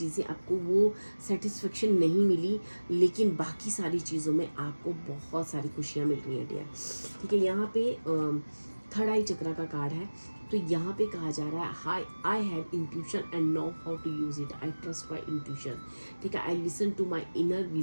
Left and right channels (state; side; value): inverted; both; correlation -1.00